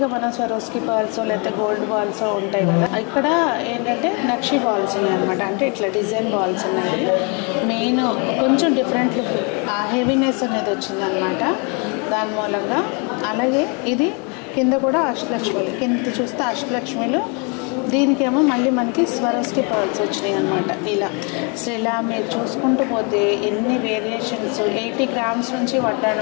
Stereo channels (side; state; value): right; quieter; 33.9 dB